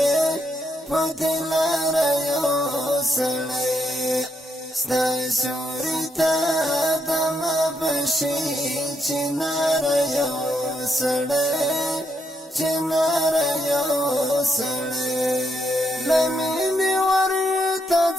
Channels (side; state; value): both; normal; correlation 0.78